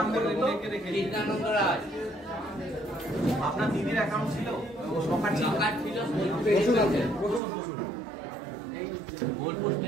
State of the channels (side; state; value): left; drops out; at 7.4 s